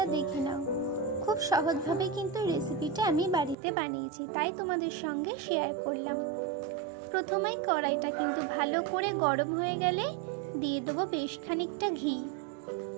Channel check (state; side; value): drops out; left; at 3.6 s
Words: দেখে নাও। খুব সহজভাবে কিন্তু রেসিপিটা আমি বাড়িতে বানিয়েছি, তাই তোমাদের সঙ্গে শেয়ার করলাম। প্রথমেই কড়াইটা কিন্তু ভালো করে গরম হয়ে গেলে দিয়ে দেবো বেশ খানিকটা ঘি।